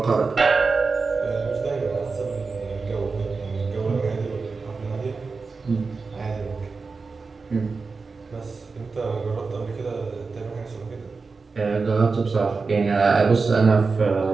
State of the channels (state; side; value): quieter; left; 4.4 dB